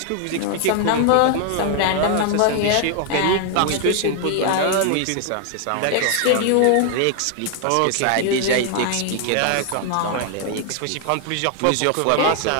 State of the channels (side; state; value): both; different; correlation 0.00